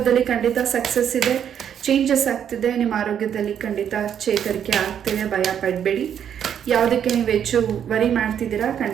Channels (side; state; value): left; quieter; 8.9 dB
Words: ಖಂಡಿತ ಸಕ್ಸಸ್ ಇದೆ, ಚೇಂಜಸ್ ಆಗ್ತಿದೆ. ನಿಮ್ಮ ಆರೋಗ್ಯದಲ್ಲಿ ಖಂಡಿತ ಚೇತರಿಕೆ ಆಗ್ತಿದೆ, ಭಯ ಪಡಬೇಡಿ. ಯಾವುದಕ್ಕೆ ನೀವು ಹೆಚ್ಚು ವರಿ ಮಾಡ್ತಿದ್ದೀರಾ,